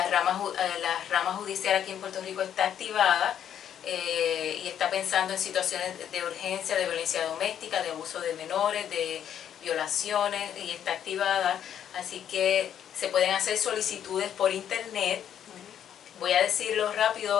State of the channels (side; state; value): right; quieter; 9.6 dB